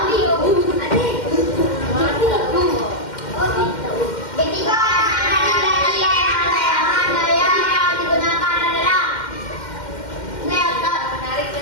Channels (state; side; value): late; right; 2.1 ms